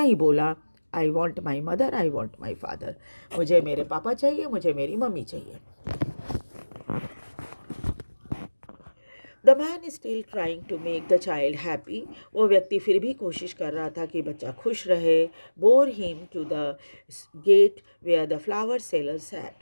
ही बोला, I want my mother, I want my father. मुझे मेरे पापा चाहिए, मुझे मेरी मम्मी चाहिए। The man is still trying to make the child happy. वो व्यक्ति फिर भी कोशिश कर रहा था कि बच्चा खुश रहे। Bore him to the gate where the flower seller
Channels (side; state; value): both; inverted; correlation -1.00